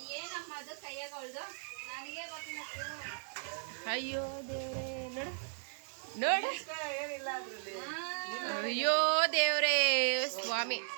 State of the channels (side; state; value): left; silent; digital silence